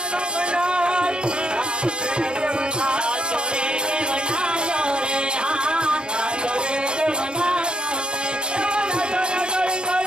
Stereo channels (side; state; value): left; late; 0.051 ms